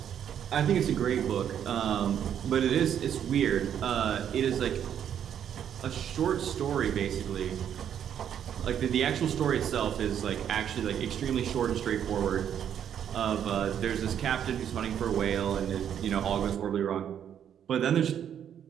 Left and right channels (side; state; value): left; quieter; 9.2 dB